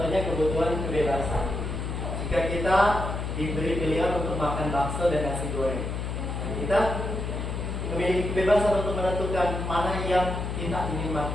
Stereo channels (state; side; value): noise; left; hum, 4 dB below the sound